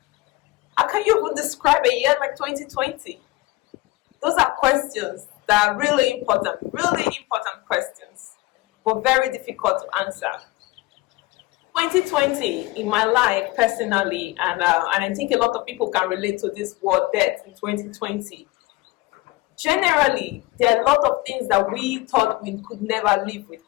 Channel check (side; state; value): right; quieter; 20.3 dB